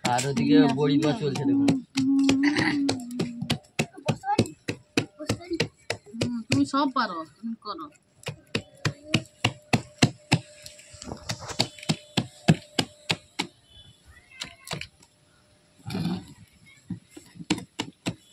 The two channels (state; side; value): identical; both; correlation 1.00